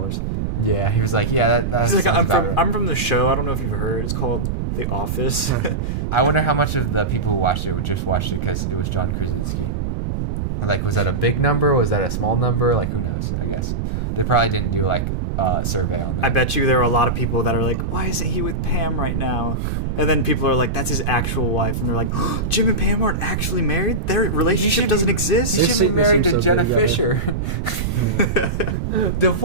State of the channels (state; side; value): noise; right; rumble, 2 dB below the sound